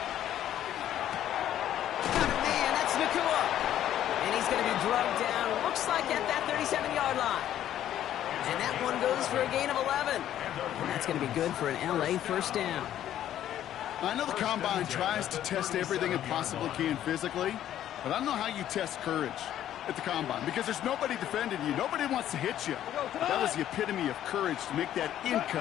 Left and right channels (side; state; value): right; quieter; 11.6 dB